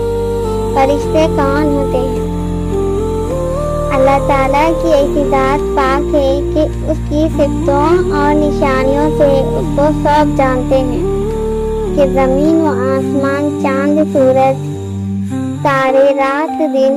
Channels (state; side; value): identical; both; correlation 1.00